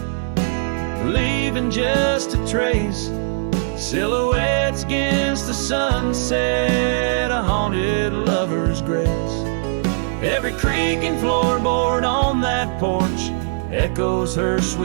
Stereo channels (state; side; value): silent; left; 66 dB below the other